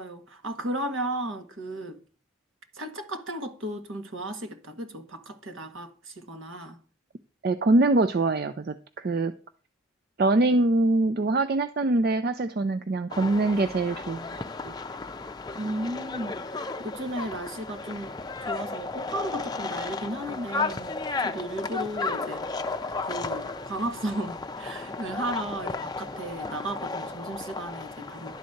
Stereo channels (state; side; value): normal; both; correlation 0.45